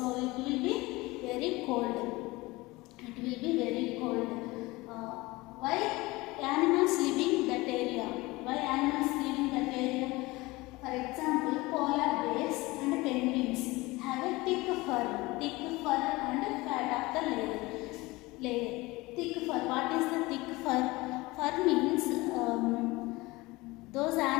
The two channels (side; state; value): right; quieter; 21.6 dB